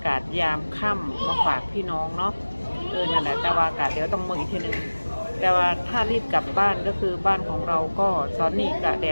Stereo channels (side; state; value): both; inverted; correlation -1.00